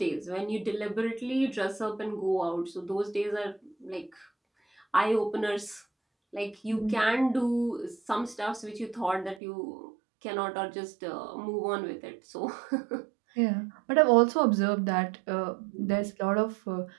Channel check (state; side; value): drops out; left; at 9.4 s